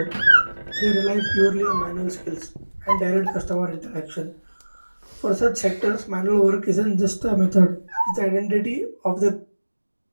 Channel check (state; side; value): inverted; both; correlation -1.00